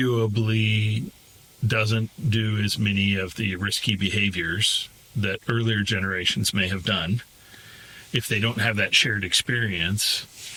doesn't do as many of the risky behaviors that earlier generations may have done? If they don't have that shared experience,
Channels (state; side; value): identical; both; correlation 1.00